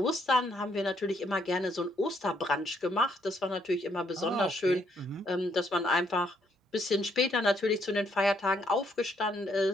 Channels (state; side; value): normal; both; correlation 0.72